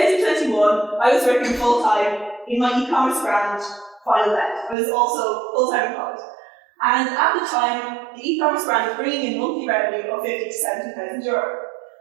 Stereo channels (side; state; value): left; drops out; at 4.8 s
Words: I was working full-time in my e-commerce brand, Final Net. I was also full-time in college. And at the time, the e-commerce brand was bringing in monthly revenue of 50 to 70,000 euro.